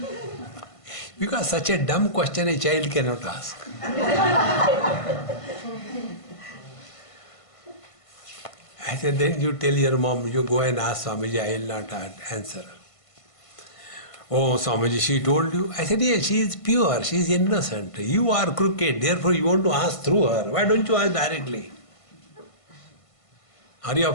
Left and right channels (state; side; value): late; right; 1.5 ms